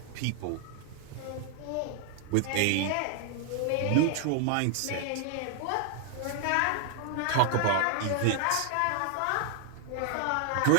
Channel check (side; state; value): both; different; correlation 0.00